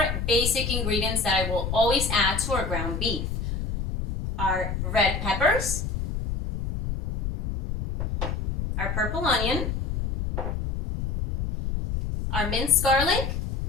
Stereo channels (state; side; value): noise; left; rumble, 3 dB below the sound